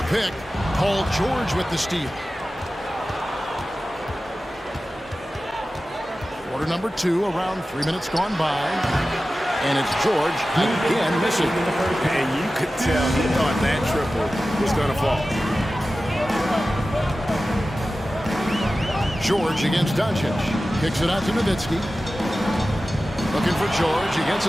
pick. Paul George with the steal. Quarter number 2, around 3 minutes gone by. And it's George again missing. And you could tell he thought that triple was going to fall. George against Doncic. Kicks it out to Nowitzki. Looking for George. He gets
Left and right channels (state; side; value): normal; both; correlation 0.95